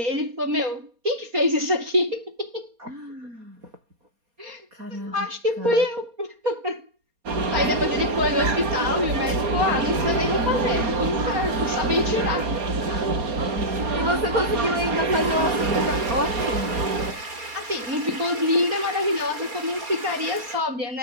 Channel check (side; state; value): left; late; 4.2 ms